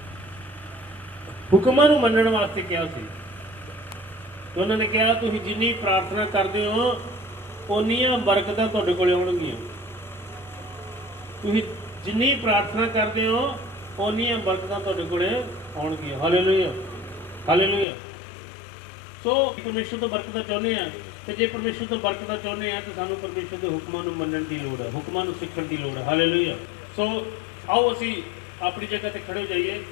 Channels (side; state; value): right; drops out; at 17.9 s